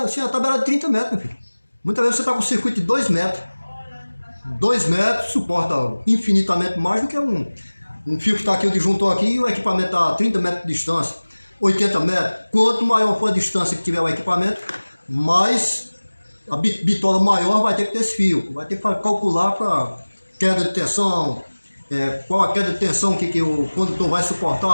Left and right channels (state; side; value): inverted; both; correlation -1.00